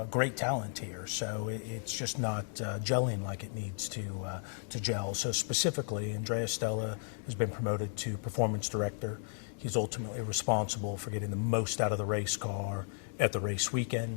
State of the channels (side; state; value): right; silent; digital silence